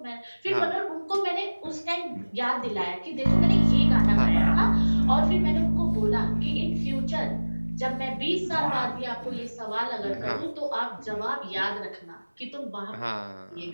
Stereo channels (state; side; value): inverted; both; correlation -1.00